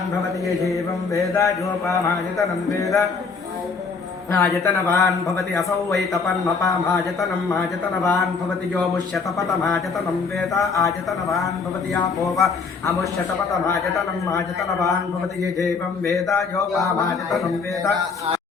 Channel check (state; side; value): quieter; right; 4.9 dB